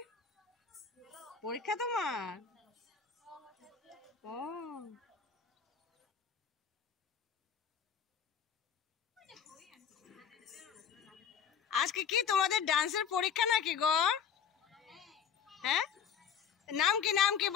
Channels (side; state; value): right; quieter; 7.3 dB